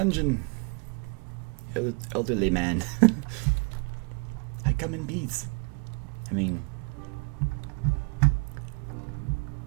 Elderly man. I come in peace. I mean...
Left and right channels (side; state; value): left; quieter; 31.0 dB